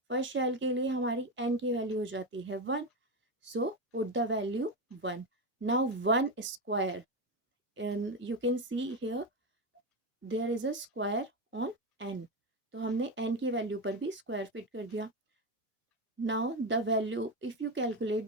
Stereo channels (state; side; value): normal; both; correlation 0.14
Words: फर्स्ट शेल के लिए हमारी एन की वैल्यू हो जाती है 1. So put the value 1. Now 1² and you can see here there is a square on N. तो हमने एन की वैल्यू पर भी स्क्वायर फिट कर दिया. Now the value, if you